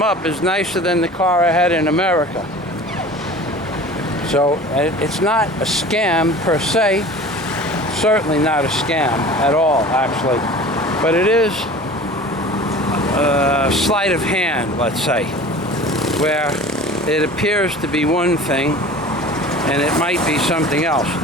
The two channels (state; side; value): normal; both; correlation 0.40